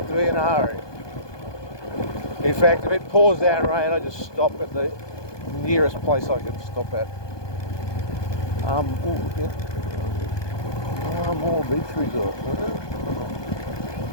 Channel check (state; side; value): late; right; 1.2 ms